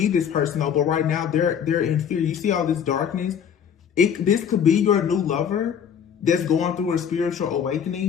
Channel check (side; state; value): right; quieter; 8.0 dB